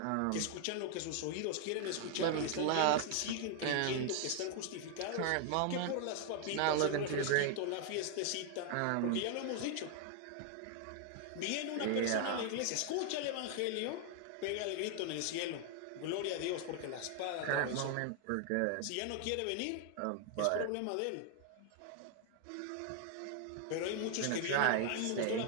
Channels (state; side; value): different; both; correlation 0.00